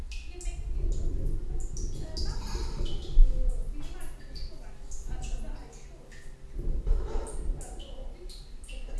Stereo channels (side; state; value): both; identical; correlation 1.00